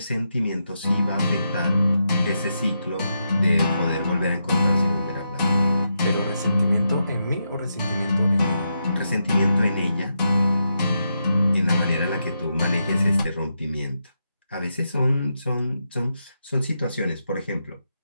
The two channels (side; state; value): both; inverted; correlation -0.84